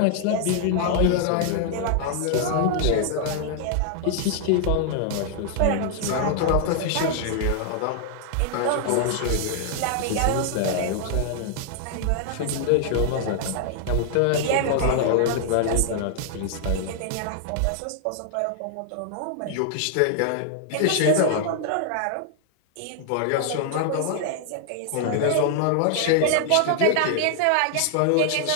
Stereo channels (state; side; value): different; both; correlation 0.00